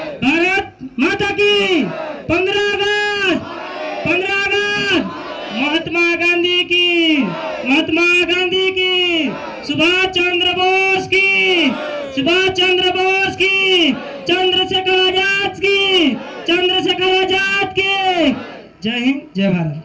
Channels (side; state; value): both; identical; correlation 1.00